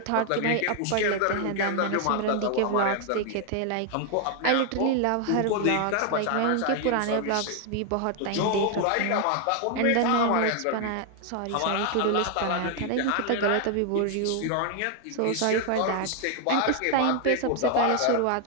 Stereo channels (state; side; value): different; both; correlation 0.00